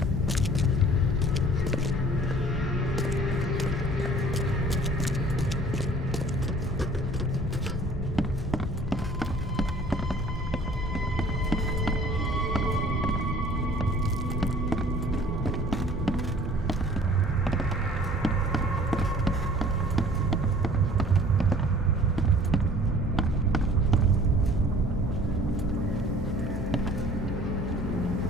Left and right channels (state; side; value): normal; both; correlation 0.51